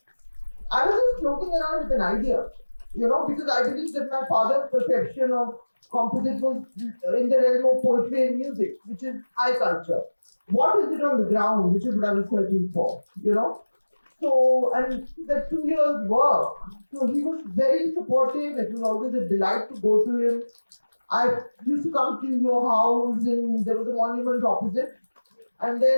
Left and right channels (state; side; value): inverted; both; correlation -1.00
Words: I was just floating around with an idea, because I believe that my father's perception of composite was in the realm of poetry and music, which is high culture. What is it on the ground, which is what I was searching for, So, and the 2 years work, so he was very supportive. It was always a delight to go to him. I used to come to your house, and there was a monument opposite. And